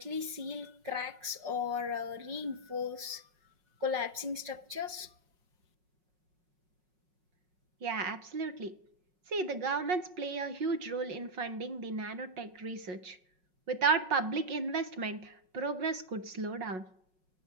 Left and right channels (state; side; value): late; left; 5.4 ms